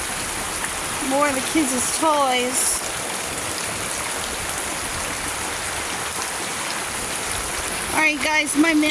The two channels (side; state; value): both; identical; correlation 1.00